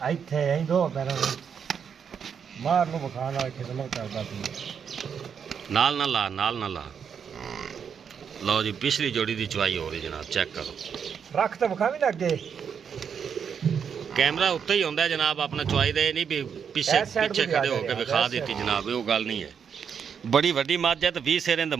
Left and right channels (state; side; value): quieter; left; 7.2 dB